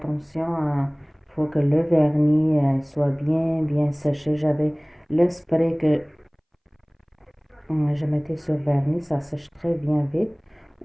Il faut que le vernis soit bien séché. J'avais le spray que je mettais sur le vernis, ça sèche très bien vite.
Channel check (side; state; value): both; identical; correlation 1.00